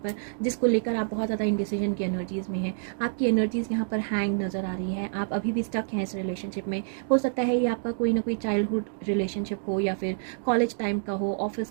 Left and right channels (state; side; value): silent; left; digital silence